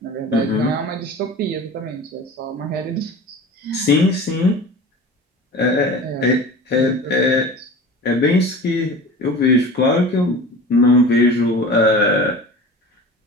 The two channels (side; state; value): both; normal; correlation 0.37